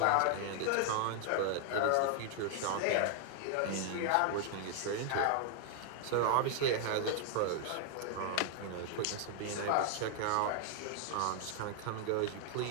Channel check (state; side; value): different; both; correlation 0.00